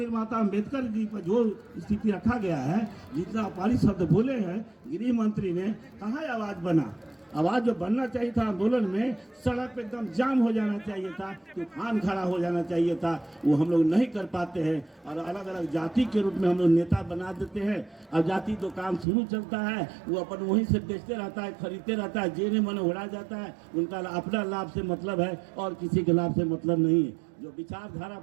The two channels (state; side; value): drops out; left; at 19.1 s